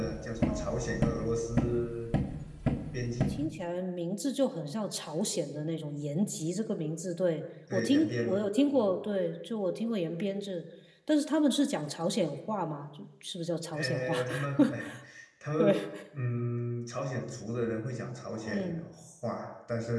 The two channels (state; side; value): identical; both; correlation 1.00